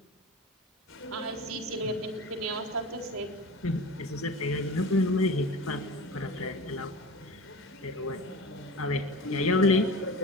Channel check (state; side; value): normal; both; correlation 0.33